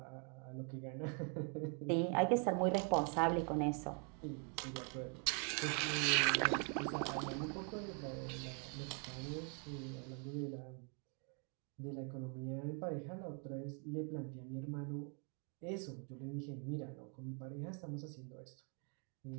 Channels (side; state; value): left; quieter; 39.2 dB